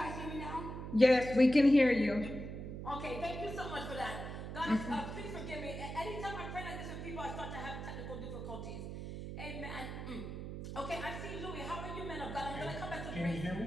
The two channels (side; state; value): right; noise; hum, 7 dB below the sound